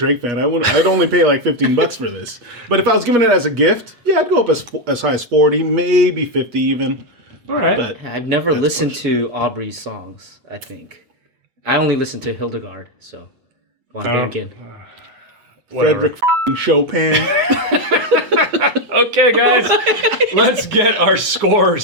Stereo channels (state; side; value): late; left; 8.2 ms